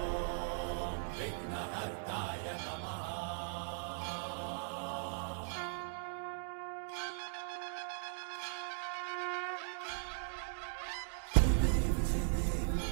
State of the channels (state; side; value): silent; left; digital silence